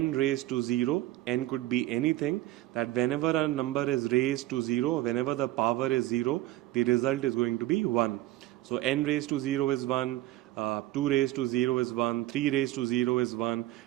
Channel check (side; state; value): left; quieter; 15.9 dB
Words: raised to 0, n could be anything, that whenever a number is raised to 0, whenever the power is 0, the result is going to be 1. So n raised to 0 is 1, 2 raised to 0 is 1, 3 raised to 0 is 1,